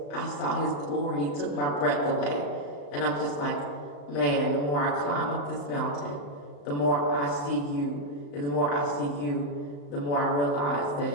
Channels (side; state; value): right; late; 35 ms